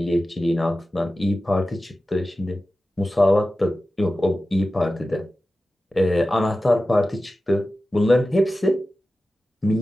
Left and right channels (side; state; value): both; normal; correlation 0.94